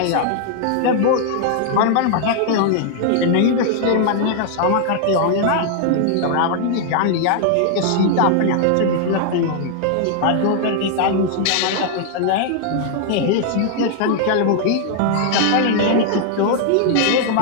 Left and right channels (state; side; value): different; both; correlation 0.00